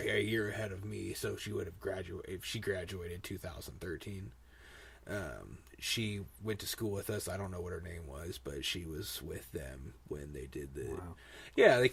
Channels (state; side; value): identical; both; correlation 1.00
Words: year ahead of me, so she would have graduated. If she graduated 2013, she went to school with us. I don't know what her name was, but she was with them when they did the. Wow. Yeah, they